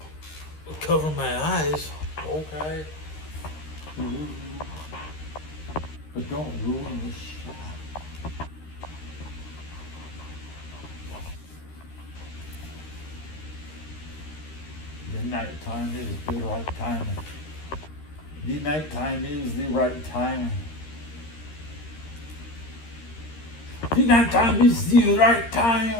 Cover my eyes. Okay. But don't ruin the shot. The nighttime is the right time. The nighttime is the right time. The nighttime is the right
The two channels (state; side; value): late; right; 13 ms